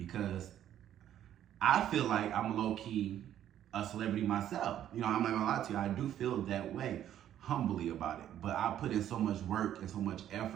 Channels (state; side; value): quieter; left; 11.1 dB